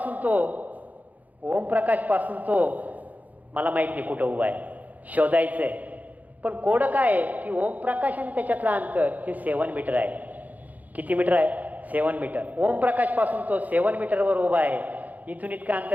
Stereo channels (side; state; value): left; late; 0.079 ms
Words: तो मला माहीत नाही कुठं उभा आहे, शोधायचं आहे. पण कोड काय आहे की ओमप्रकाश आणि त्याच्यातलं अंतर हे 7 मीटर आहे. किती मीटर आहे? 7 मीटर. ओमप्रकाशपासून तो 7 मीटरवर उभा आहे. इथून इतकं